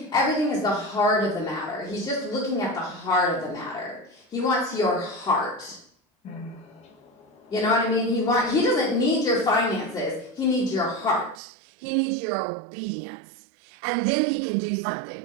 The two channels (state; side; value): drops out; left; at 11.4 s